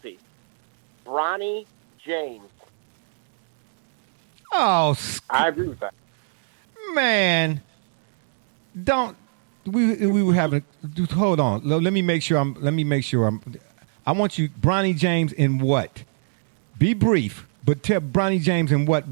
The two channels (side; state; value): left; silent; 64 dB below the other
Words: Bronny James. Oh, I agree with that. Man, we were having. Hold on. Let me make sure I'm. I want you, Bronny James, in what? Be brief, but tell Bronny James in what